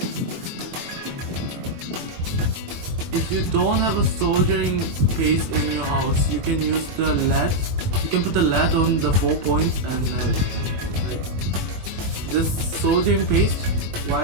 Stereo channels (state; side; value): late; left; 23 ms